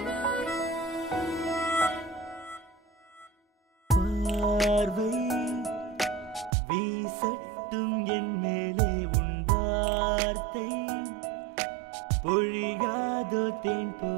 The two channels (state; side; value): drops out; left; at 6.5 s